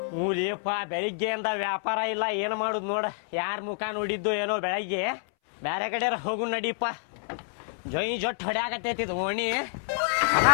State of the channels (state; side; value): silent; right; 59 dB below the other